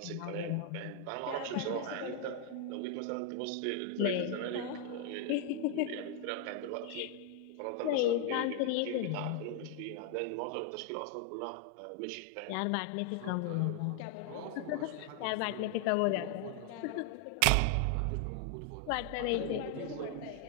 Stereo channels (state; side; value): different; both; correlation 0.00